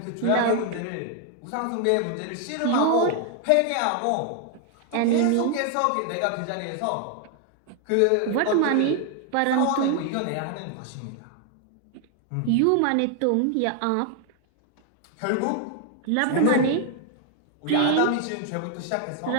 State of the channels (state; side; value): different; both; correlation 0.00